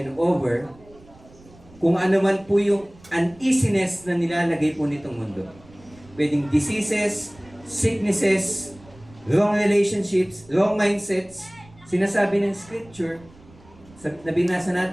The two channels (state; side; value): noise; right; rumble, 25 dB below the sound